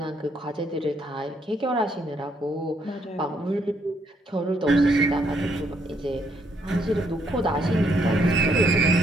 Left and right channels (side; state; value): both; normal; correlation 0.72